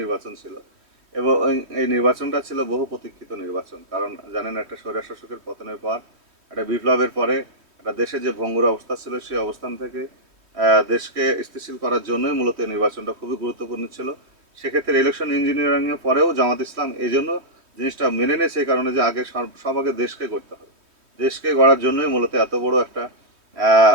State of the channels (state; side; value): late; left; 3.2 ms